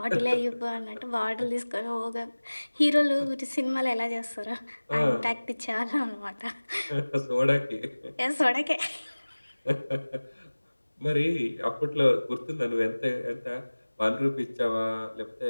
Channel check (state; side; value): inverted; both; correlation -1.00